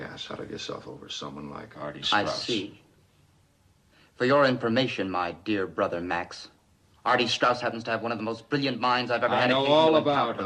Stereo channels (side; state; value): both; identical; correlation 1.00